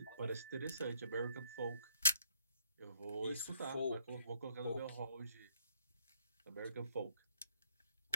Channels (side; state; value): both; inverted; correlation -0.65